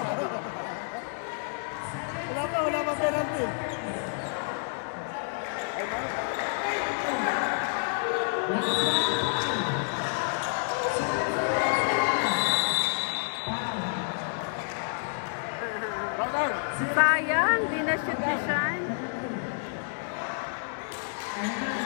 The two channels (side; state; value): right; silent; digital silence